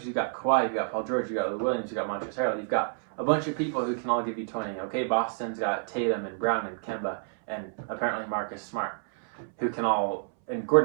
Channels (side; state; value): left; silent; 59 dB below the other